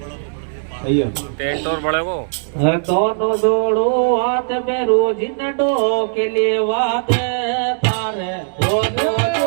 टेंट और बड़े को दोनों जोड़ो हाथ में रोज नडो के लिए वाद तारे दोनों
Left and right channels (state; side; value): silent; left; digital silence